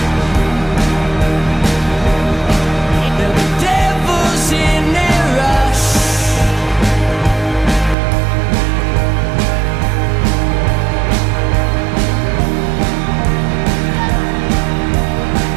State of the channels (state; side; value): drops out; left; at 8.0 s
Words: The devil's in their rush.